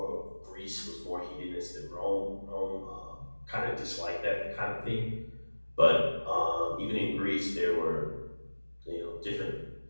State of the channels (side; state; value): both; inverted; correlation -1.00